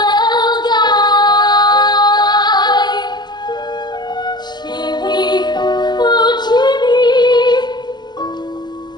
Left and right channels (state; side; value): late; right; 0.21 ms